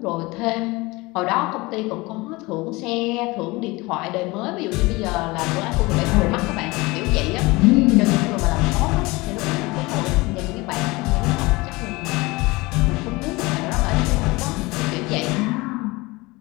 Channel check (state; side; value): quieter; right; 23.0 dB